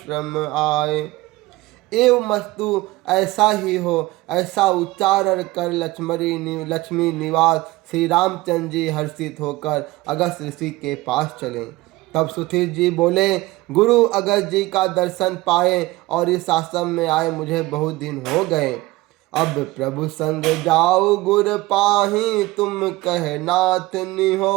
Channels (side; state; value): left; quieter; 19.7 dB